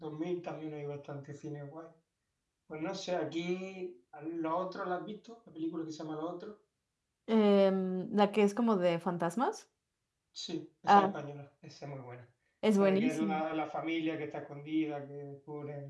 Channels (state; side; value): identical; both; correlation 1.00